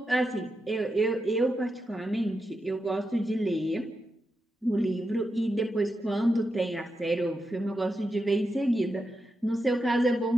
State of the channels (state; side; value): normal; both; correlation 0.87